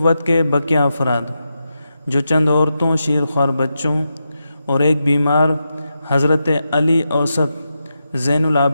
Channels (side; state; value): both; inverted; correlation -0.87